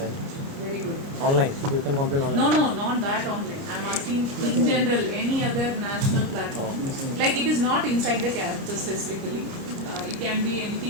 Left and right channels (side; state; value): left; late; 29 ms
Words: Very good. Online, you can complain online. No, not that online. I'm asking in general, any other national platform. Like it is not inside the campus specifically. It can be